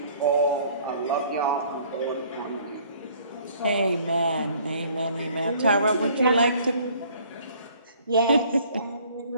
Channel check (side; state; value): both; inverted; correlation -0.57